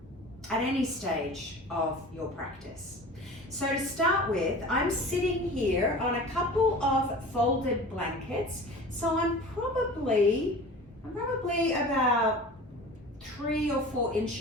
any stage of your practice. So to start with, I'm sitting here on a couple of folded blankets. So I'm probably about 3 or 4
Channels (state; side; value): normal; both; correlation 0.39